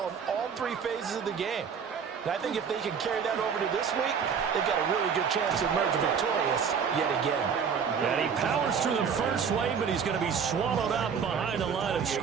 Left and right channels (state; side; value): quieter; left; 6.6 dB